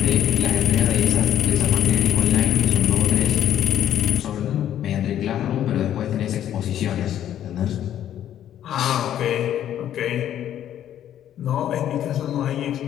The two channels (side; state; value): right; quieter; 11.0 dB